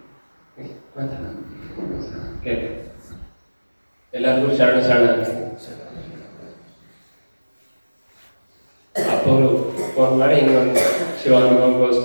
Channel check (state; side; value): inverted; both; correlation -1.00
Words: ಎಲ್ಲರಿಗೂ ಶರಣ ಅಪ್ಪವರು ಫೋನ್ ಮಾಡಿ ಹಿಂಗೊಂದು